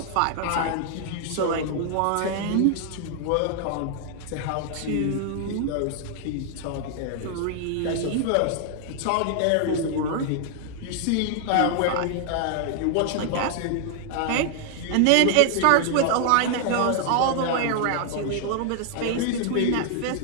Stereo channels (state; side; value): different; both; correlation 0.00